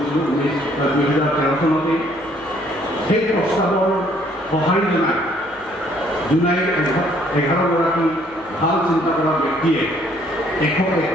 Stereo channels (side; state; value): left; noise; hum, 28 dB below the sound